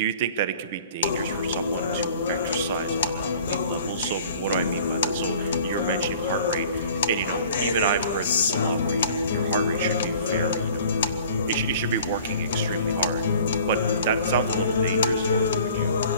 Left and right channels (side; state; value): both; inverted; correlation -0.49